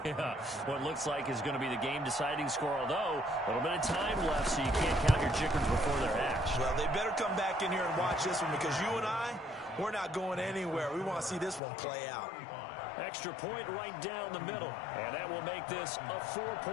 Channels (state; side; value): drops out; right; at 11.6 s